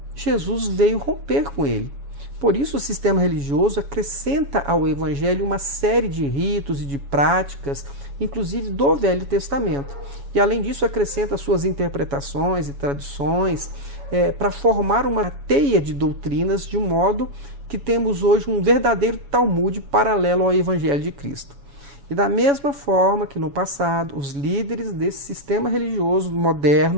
Jesus veio romper com ele. Por isso, o sistema religioso acrescenta ao Evangelho uma série de ritos e de práticas, inclusive do Velho Testamento. E, além disso, acrescenta suas interpretações e tradições para formar uma teia de doutrinas, de modo que temos hoje um verdadeiro Talmud paralelo ao Evangelho de Cristo. E da mesma forma que no passado, os líderes desse sistema religioso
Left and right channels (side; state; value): left; late; 7.1 ms